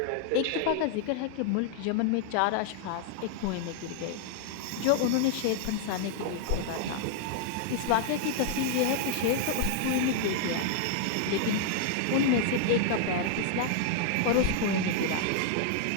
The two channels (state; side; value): different; both; correlation 0.00